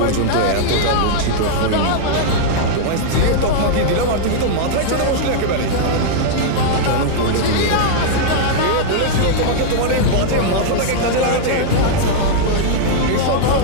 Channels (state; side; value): different; both; correlation -0.01